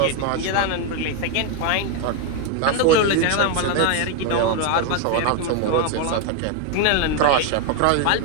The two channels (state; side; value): different; both; correlation 0.01